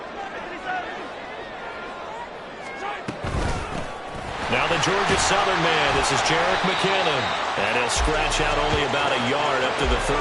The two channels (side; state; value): both; identical; correlation 1.00